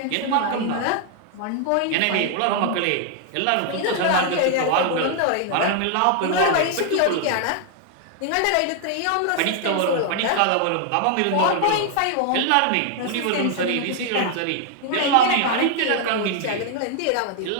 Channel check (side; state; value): both; different; correlation 0.00